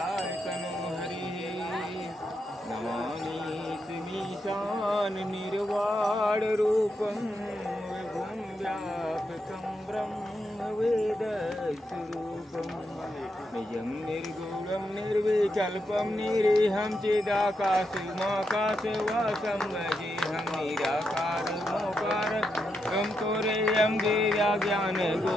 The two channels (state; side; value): normal; both; correlation 0.83